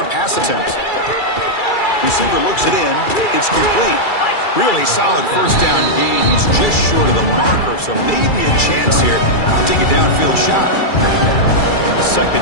pass attempt. Receiver looks it in. It's complete. Really solid first down gain. He's just short of the marker, so maybe a chance here to take a downfield shot.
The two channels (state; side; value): late; right; 2.3 ms